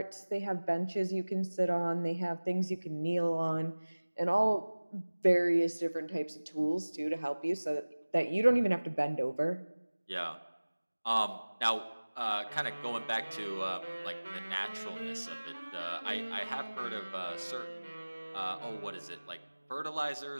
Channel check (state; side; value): inverted; both; correlation -1.00